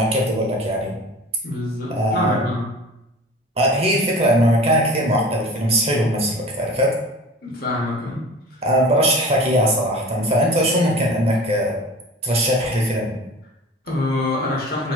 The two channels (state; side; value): normal; both; correlation 0.39